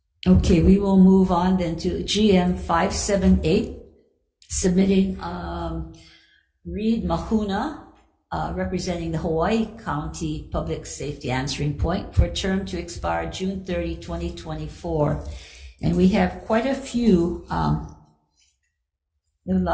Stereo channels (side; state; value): both; identical; correlation 1.00